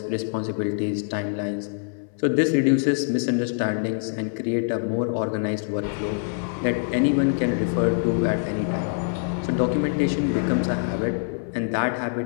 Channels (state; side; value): silent; right; 62 dB below the other